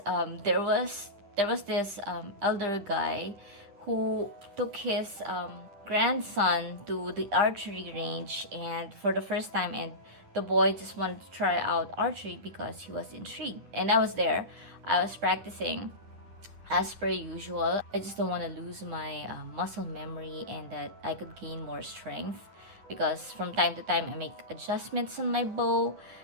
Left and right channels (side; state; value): left; late; 10 ms